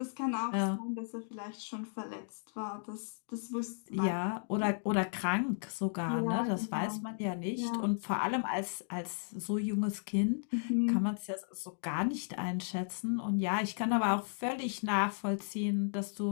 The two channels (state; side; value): silent; right; digital silence